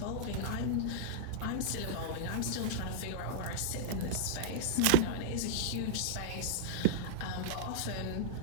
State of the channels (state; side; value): different; both; correlation -0.02